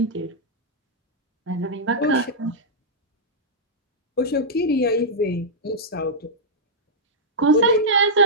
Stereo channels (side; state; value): both; normal; correlation -0.09